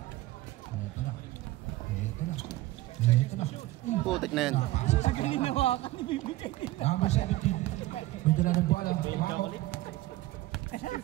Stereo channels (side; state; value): left; quieter; 17.2 dB